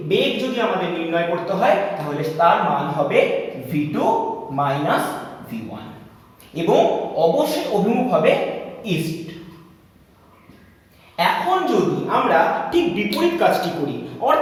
বেগ যদি আমাদের নির্ণয় করতে হয় তাহলে তার মান হবে v2 v1 এবং অবশ্যই অভিমুখ হবে ইস্ট। এখন যদি আমরা ঠিক বিপরীত কাজটি করি,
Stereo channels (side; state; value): both; identical; correlation 1.00